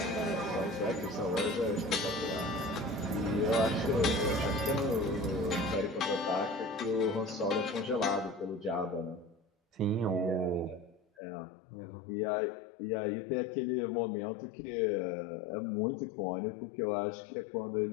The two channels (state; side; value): drops out; right; at 11.0 s